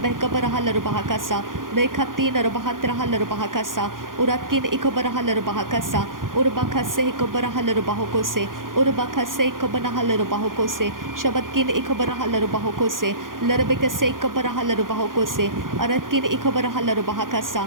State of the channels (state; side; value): late; left; 0.90 ms